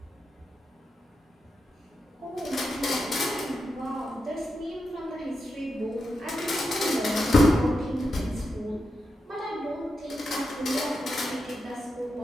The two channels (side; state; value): both; normal; correlation 0.87